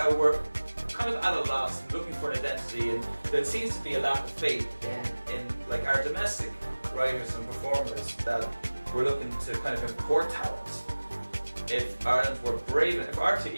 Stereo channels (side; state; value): both; inverted; correlation -1.00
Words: we're kind of at a loss and looking for an identity, and there seems to be a lack of faith in like our domestic writers and performers, that we're looking to kind of import talent. If Ireland were brave, if